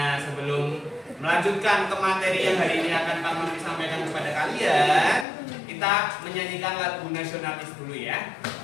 sebelum melanjutkan ke materi yang hari ini akan kami sampaikan kepada kalian, kita menyanyikan lagu nasionalis dulu ya.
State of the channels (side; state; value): right; drops out; at 5.2 s